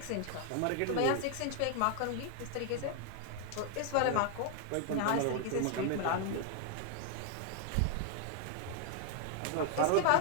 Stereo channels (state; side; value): different; both; correlation 0.00